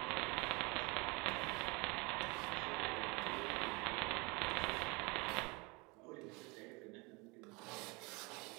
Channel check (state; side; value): quieter; left; 27.3 dB